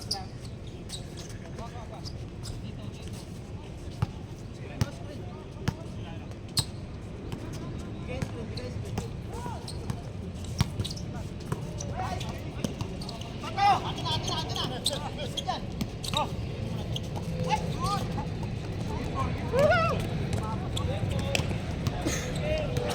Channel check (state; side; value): identical; both; correlation 1.00